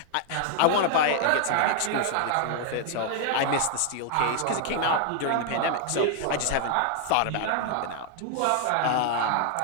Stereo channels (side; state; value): both; different; correlation 0.00